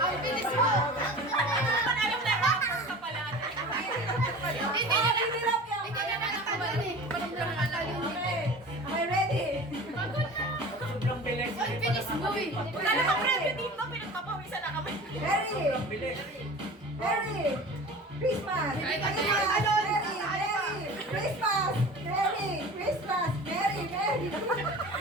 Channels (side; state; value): both; normal; correlation 0.38